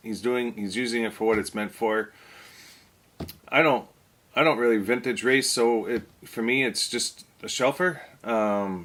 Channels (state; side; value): identical; both; correlation 1.00